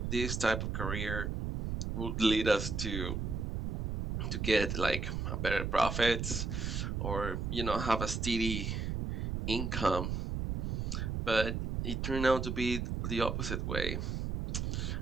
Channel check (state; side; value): noise; right; rumble, 1 dB below the sound